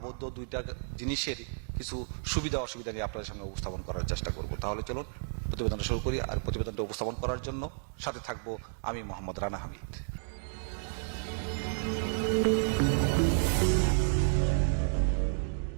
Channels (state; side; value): silent; left; digital silence